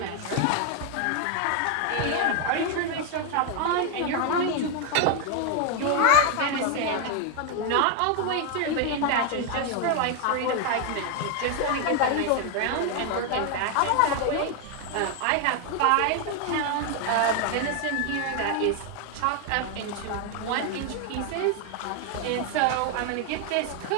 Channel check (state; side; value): different; both; correlation 0.00